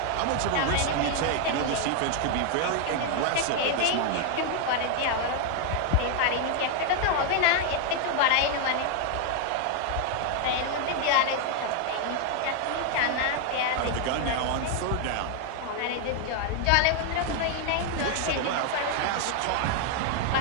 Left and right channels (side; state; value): both; different; correlation 0.00